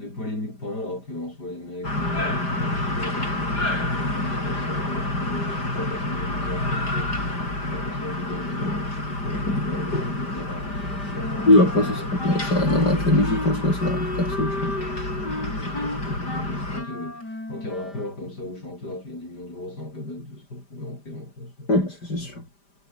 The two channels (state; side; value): late; right; 5.0 ms